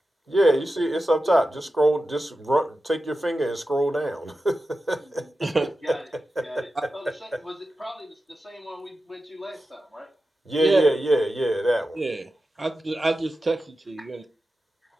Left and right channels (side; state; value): both; normal; correlation 0.92